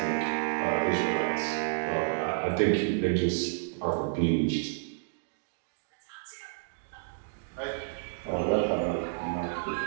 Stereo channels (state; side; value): silent; left; digital silence